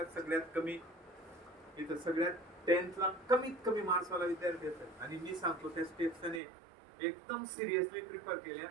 सगळ्यात कमी, इथं सगळ्यात 10thला कमीत कमी मार्क्सवाला विद्यार्थी असेल, आणि मी सांगतो त्या स्टेप्स त्याने एकदम सिरियसली प्रिफर केल्या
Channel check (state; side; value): drops out; left; at 6.4 s